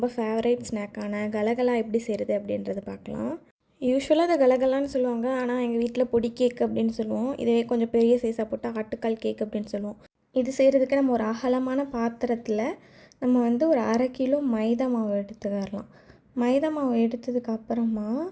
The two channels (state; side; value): identical; both; correlation 1.00